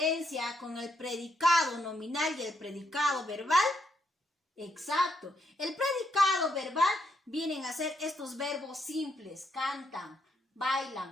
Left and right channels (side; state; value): both; normal; correlation 0.77